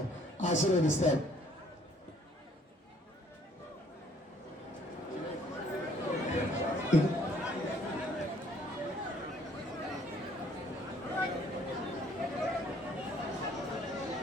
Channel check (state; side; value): normal; both; correlation 0.61